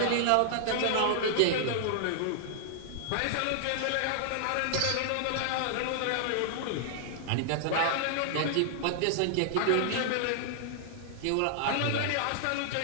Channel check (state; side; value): different; both; correlation -0.01